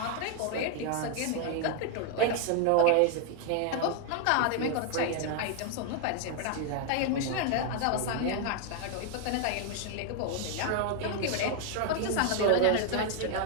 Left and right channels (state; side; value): different; both; correlation 0.00